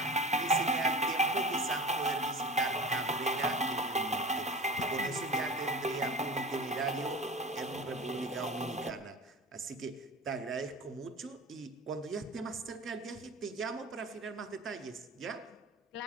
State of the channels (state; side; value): normal; both; correlation 0.34